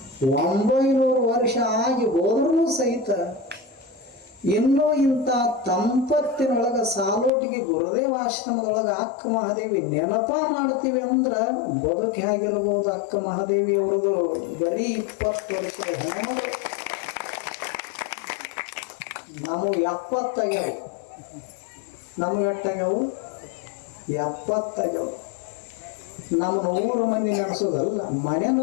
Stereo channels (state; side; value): drops out; right; at 7.3 s